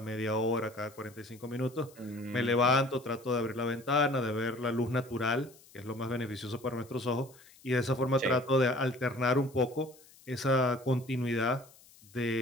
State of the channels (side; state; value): left; noise; hiss, 25 dB below the sound